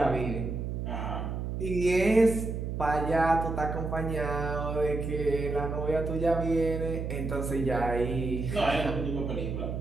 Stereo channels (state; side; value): noise; right; hum, 4 dB below the sound